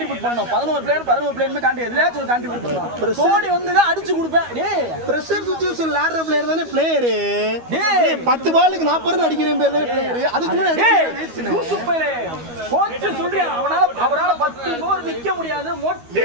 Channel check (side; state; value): left; late; 12 ms